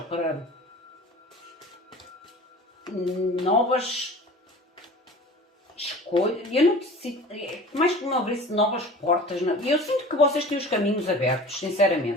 para novas escolhas, eu não sinto, mais que uma vez novas portas, eu sinto que vocês têm os caminhos abertos,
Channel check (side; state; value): both; normal; correlation 0.41